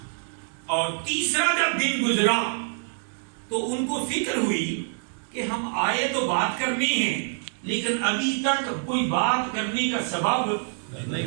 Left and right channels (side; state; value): left; silent; digital silence